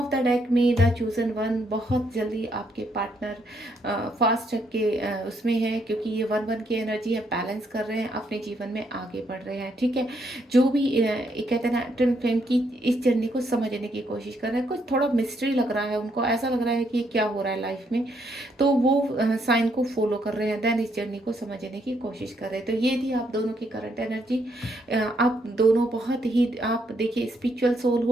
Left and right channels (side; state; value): both; normal; correlation 0.74